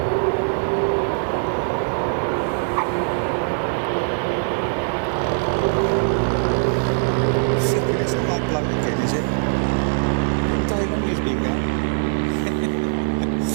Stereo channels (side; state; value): left; silent; digital silence